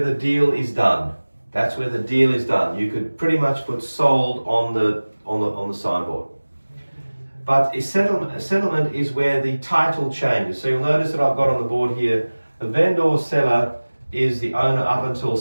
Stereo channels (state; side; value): inverted; both; correlation -1.00